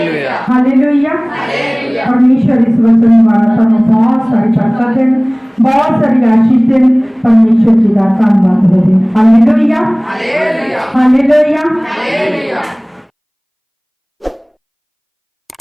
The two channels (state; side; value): identical; both; correlation 1.00